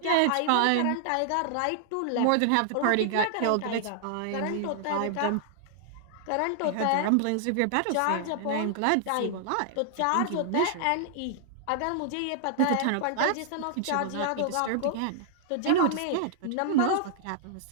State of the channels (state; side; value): different; both; correlation -0.01